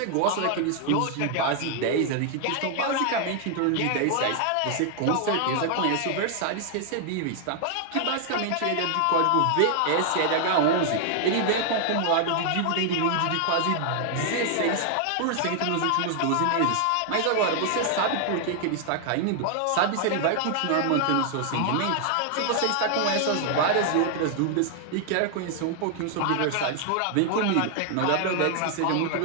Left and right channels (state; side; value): different; both; correlation 0.00